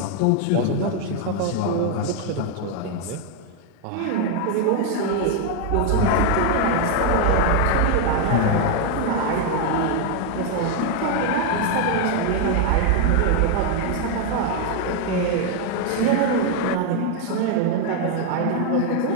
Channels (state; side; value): different; both; correlation 0.00